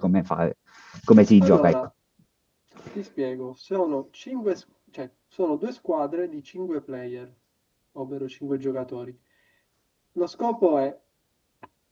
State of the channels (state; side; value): identical; both; correlation 1.00